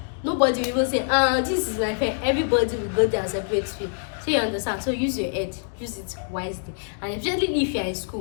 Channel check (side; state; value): right; silent; digital silence